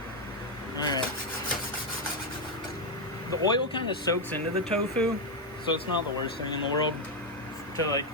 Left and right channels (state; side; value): normal; both; correlation 0.04